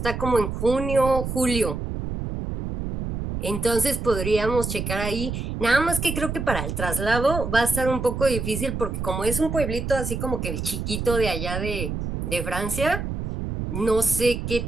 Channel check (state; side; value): noise; right; rumble, 4 dB below the sound